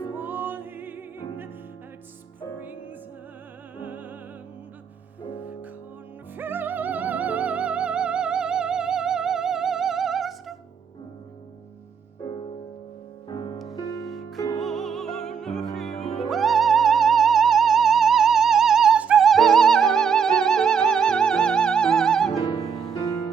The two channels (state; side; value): quieter; left; 6.7 dB